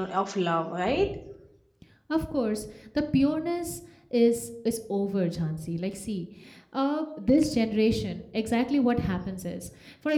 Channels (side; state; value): both; identical; correlation 1.00